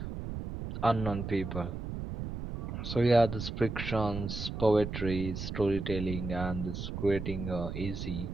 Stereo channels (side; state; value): right; noise; rumble, 6 dB below the sound